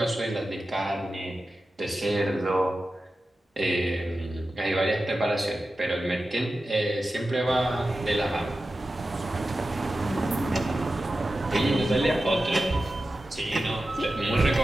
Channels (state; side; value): normal; both; correlation 0.93